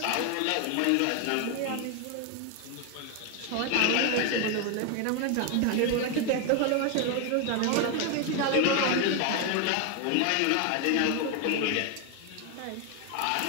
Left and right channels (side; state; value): both; different; correlation 0.01